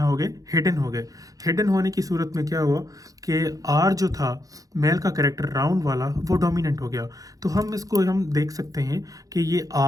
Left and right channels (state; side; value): late; left; 0.17 ms